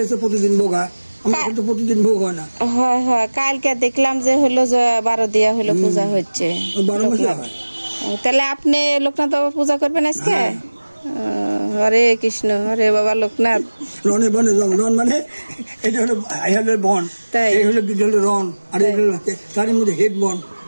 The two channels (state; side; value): inverted; both; correlation -1.00